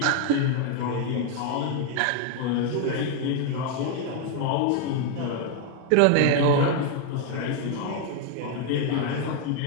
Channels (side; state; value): both; different; correlation 0.00